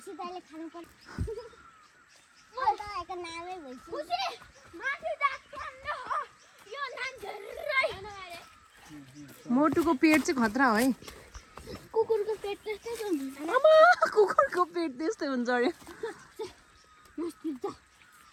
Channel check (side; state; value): both; identical; correlation 1.00